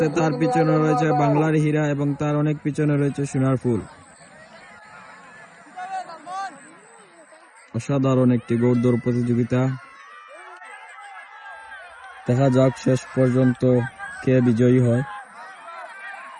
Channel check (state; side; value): identical; both; correlation 1.00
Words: তার পিছনে রয়েছে বাংলার হীরা এবং তার অনেক পিছনে রয়েছে সোনার ফুল। অসাধারণ একটি ঘোড়দৌড় প্রতিযোগিতা। দেখা যাক শেষ পর্যন্ত কে বিজয়ী হয়।